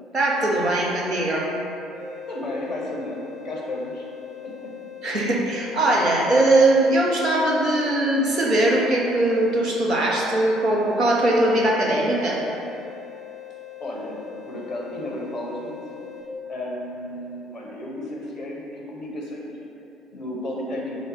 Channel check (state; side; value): normal; both; correlation 0.68